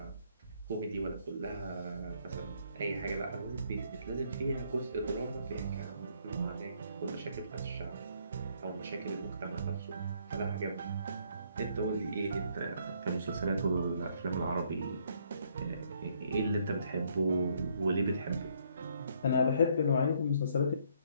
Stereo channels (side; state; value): both; inverted; correlation -0.68